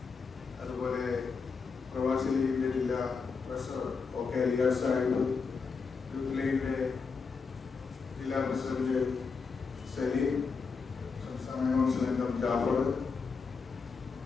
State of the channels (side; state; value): right; quieter; 5.1 dB